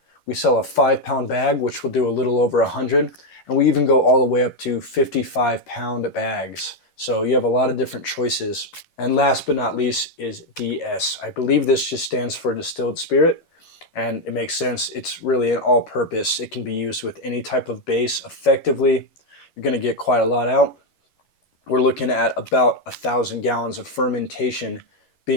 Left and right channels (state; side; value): late; right; 11 ms